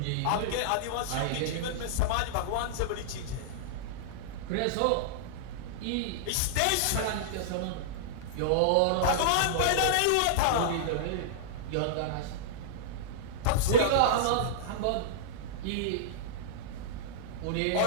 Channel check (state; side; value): different; both; correlation -0.02